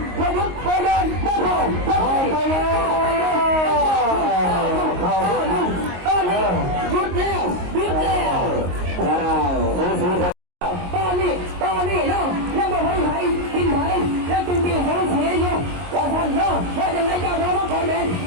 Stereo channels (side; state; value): left; late; 22 ms